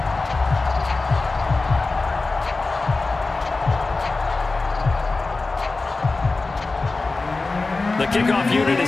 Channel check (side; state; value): right; quieter; 3.6 dB